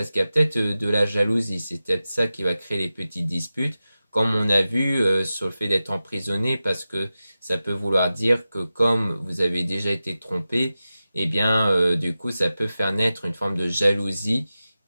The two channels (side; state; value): both; inverted; correlation -0.94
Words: qu'il y a peut-être de la jalousie, c'est peut-être ça qui va créer les petites disputes, comme on a vu sur le fait d'être emprisonné, parce que ça peut vouloir dire que comme vous avez déjà été trompé, eh bien du coup ça peut faire naître une forme de jalousie